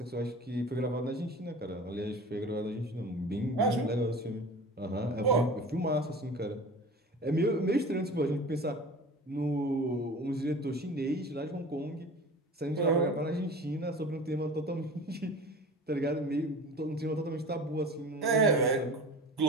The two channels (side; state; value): both; normal; correlation 0.38